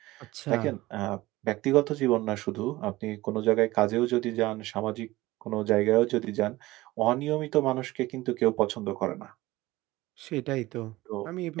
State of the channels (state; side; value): quieter; left; 18.6 dB